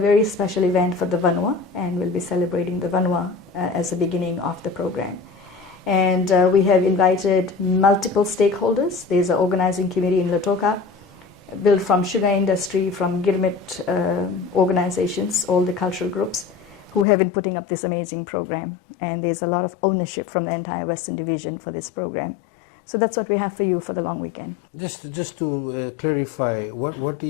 special event for the Vanua, and we'll be celebrating the Vanua as the beginning of the program. And we have invited multiple stakeholders. There's an organizing committee in Lautoka, built from sugar industry, from Girmit organizations, all the cultural groups, who have been putting up this amazing program. And there's a lot of ownership from the entire Western Division for this program. So that's what we have for you for the long weekend. Just to clarify, what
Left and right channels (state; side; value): drops out; right; at 17.1 s